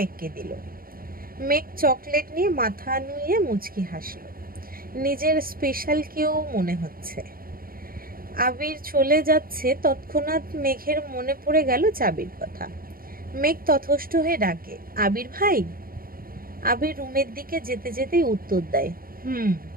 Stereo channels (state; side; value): late; left; 0.42 ms